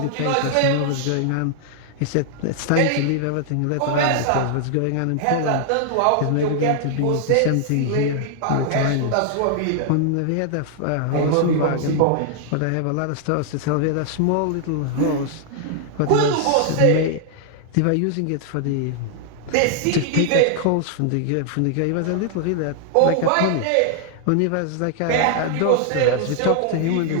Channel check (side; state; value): both; different; correlation 0.00